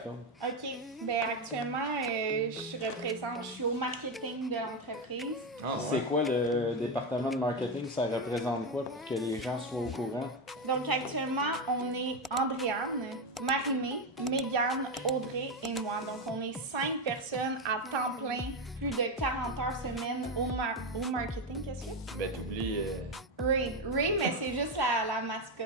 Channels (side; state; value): both; normal; correlation 0.11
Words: OK. Ben actuellement, je suis au marketing de l'entreprise. Ah, C'est ouais. quoi le département de marketing? Ça représente quoi pour que les gens soient au courant? Donc actuellement, on est Andréane, Marie-Mé, Mégane, Audrey et moi. Donc on est 5 personnes à temps plein, plus de 40 heures semaine au marketing. Qu'est-ce que c'est? Ben, t'oublies. Ray. Ray, mais c'est juste la